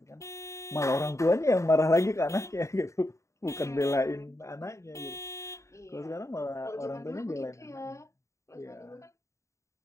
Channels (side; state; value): right; late; 0.14 ms